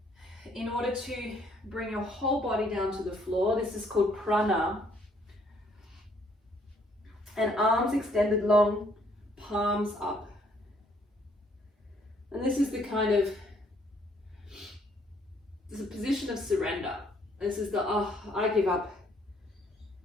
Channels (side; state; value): both; normal; correlation 0.66